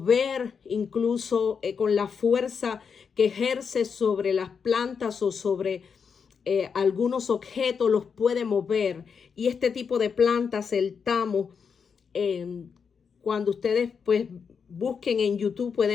incluso con la fuerza que ejerce sobre las plantas o sobre algunos objetos, los puede mover. Y este tipo de plantas, el tamo, cuando ustedes pues busquen en YouTube,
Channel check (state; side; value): quieter; right; 6.2 dB